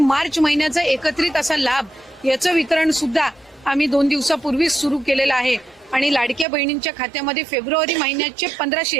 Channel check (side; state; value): left; drops out; at 6.5 s